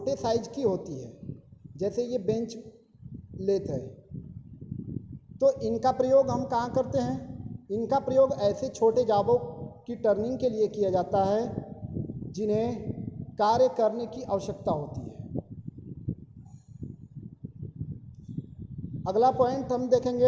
साइज की होती है, जैसे ये बेंच लेथ है। तो इनका प्रयोग हम कहाँ करते हैं? इनका प्रयोग ऐसे छोटे जाबों की टर्निंग के लिए किया जाता है जिन्हें कार्य करने की आवश्यकता होती है। अगला पॉइंट हम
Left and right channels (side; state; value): both; identical; correlation 1.00